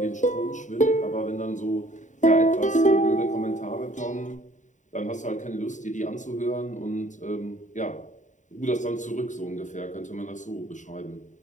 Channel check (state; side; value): late; right; 0.36 ms